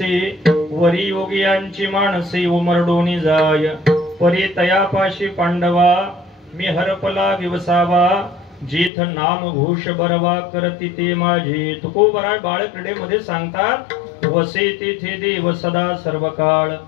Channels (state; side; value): drops out; right; at 8.9 s